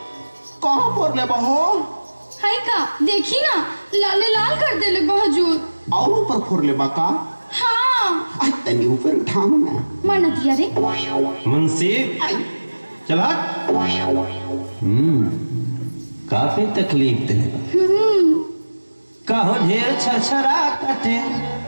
कहाँ पर ले बहो? हाय का देखी ना, लाले लाल कर देले बहजूर। और ऊपर फोड़ ले बाका। हाँ आई तनी ऊपर उठाओ ना। माना दिया रे। मुंशी चला। काफी तकलीफ देगा। कहो ढेर छरछरा कटे।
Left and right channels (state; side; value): inverted; both; correlation -1.00